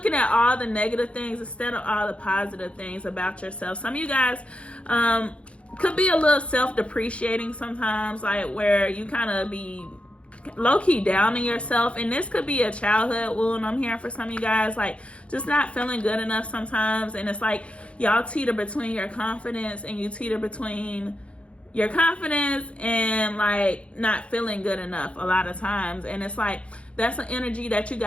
at all the negative things instead of all the positive things about yourself. Some of you guys could be a little self-depreciating sometimes, like where you kind of be low-key down on yourself, and this could be a childhood wound. I'm hearing for some of you guys, like just not feeling good enough sometimes, and it's like y'all teeter between your confidence and your confidence and like not feeling good enough a lot of times. And it's like that's an energy that you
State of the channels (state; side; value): late; right; 0.061 ms